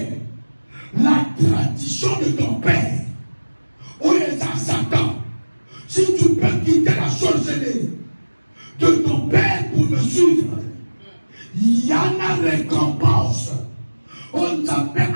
la tradition de ton père, où est Satan, si tu peux quitter la sorcellerie de ton père pour me suivre, il y a une récompense. On t'appelle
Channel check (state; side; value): inverted; both; correlation -1.00